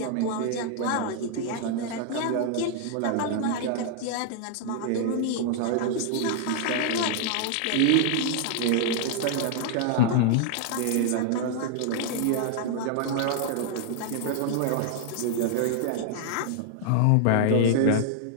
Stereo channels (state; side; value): different; both; correlation 0.00